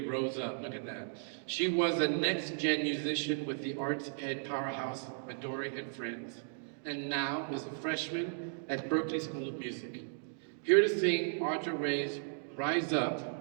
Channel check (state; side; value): silent; left; digital silence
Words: rose up, look at that. She was a next-gen musician with the arts ed powerhouse Midori and Friends, and now is a freshman at Berklee School of Music. Here to sing Audra Ray's Rise